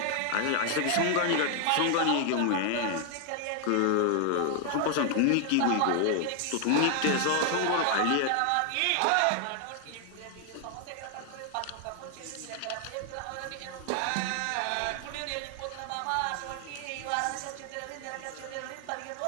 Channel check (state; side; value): different; both; correlation 0.00